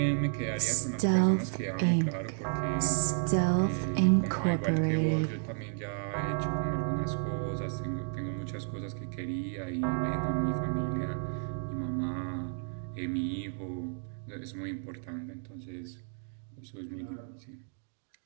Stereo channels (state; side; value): silent; left; 56 dB below the other